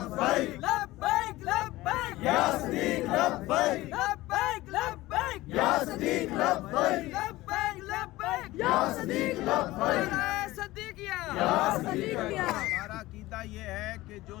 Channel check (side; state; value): right; quieter; 18.2 dB